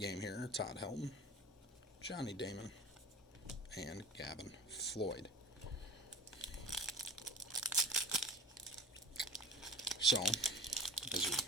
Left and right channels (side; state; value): both; normal; correlation 0.36